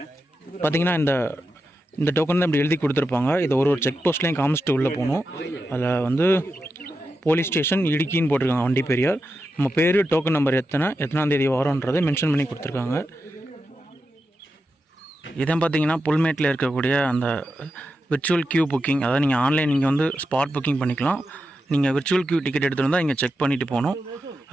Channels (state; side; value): normal; both; correlation 0.88